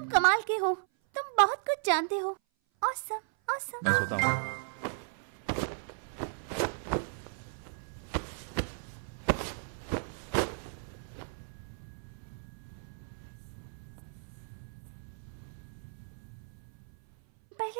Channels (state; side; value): silent; left; 54 dB below the other